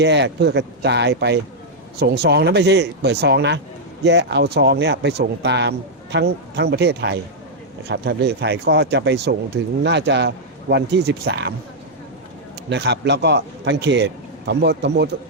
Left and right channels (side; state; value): both; normal; correlation -0.04